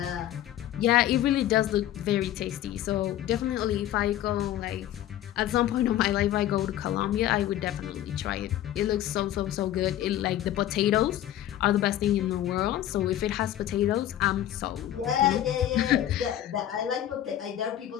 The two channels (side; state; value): right; quieter; 12.4 dB